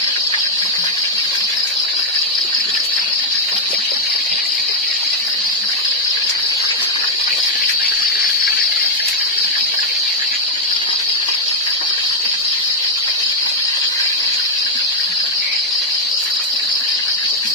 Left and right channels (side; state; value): both; normal; correlation 0.01